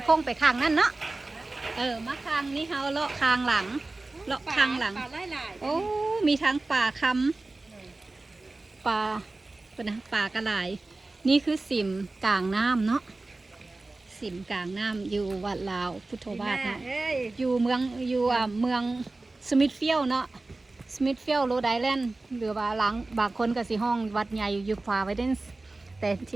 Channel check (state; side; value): quieter; left; 3.2 dB